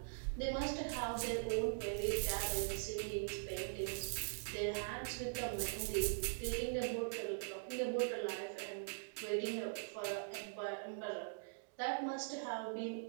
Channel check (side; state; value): left; silent; digital silence